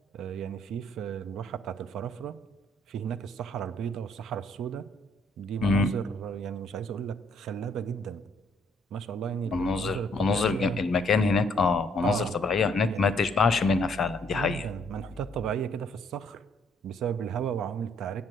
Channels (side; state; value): both; normal; correlation 0.66